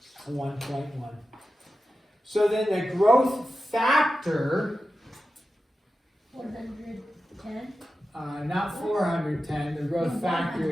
1.1. So then the growth factor, 410. Not 410, the growth factor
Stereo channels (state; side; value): normal; both; correlation 0.92